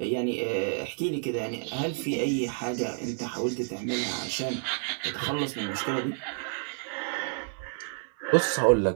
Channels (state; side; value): silent; left; 57 dB below the other